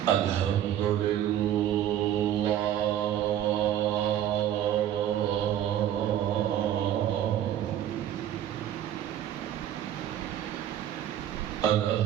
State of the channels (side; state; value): left; quieter; 11.1 dB